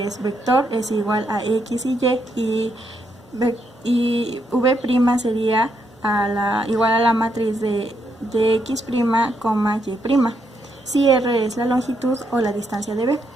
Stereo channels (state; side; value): normal; both; correlation 0.78